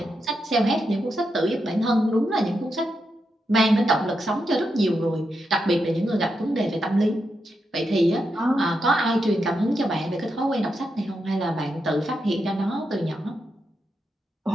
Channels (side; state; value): both; normal; correlation 0.85